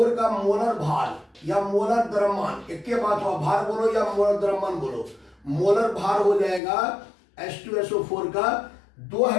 का मोलर भार या मोलर द्रव्यमान, एक के बात हुआ, भार बोलो या मोलर द्रव्यमान बोलो। मोलर भार हो जाएगा H2SO4 का, दो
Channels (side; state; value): right; drops out; at 6.6 s